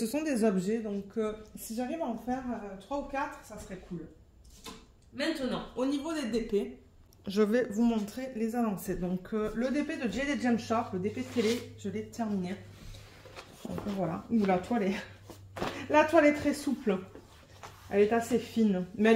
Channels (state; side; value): identical; both; correlation 1.00